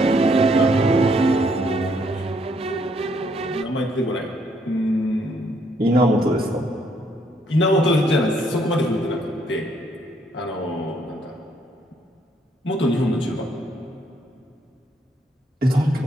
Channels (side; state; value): both; normal; correlation 0.70